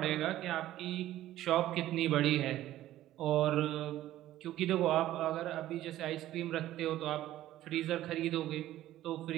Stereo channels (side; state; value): left; quieter; 14.0 dB